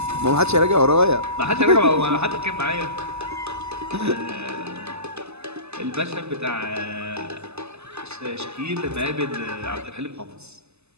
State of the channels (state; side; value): late; left; 0.80 ms